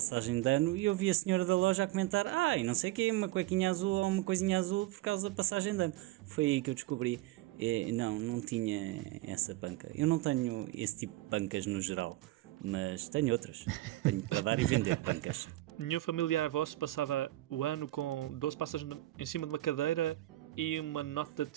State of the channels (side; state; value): left; quieter; 17.1 dB